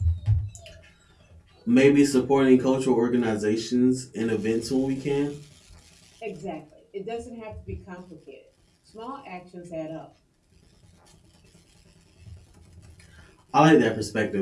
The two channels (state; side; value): identical; both; correlation 1.00